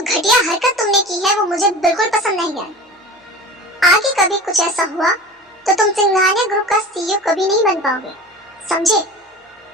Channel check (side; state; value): both; normal; correlation 0.35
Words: घटिया हरकत तुमने की है वो मुझे बिल्कुल पसंद नहीं आई। आगे कभी कुछ ऐसा हुआ तो तुम सिंघानिया ग्रुप का सीईओ कभी नहीं बन पाओगे, समझे?